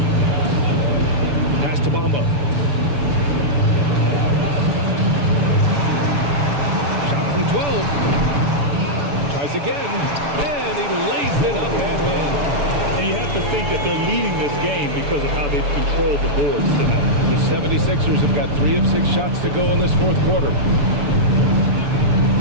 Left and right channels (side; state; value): left; late; 6.9 ms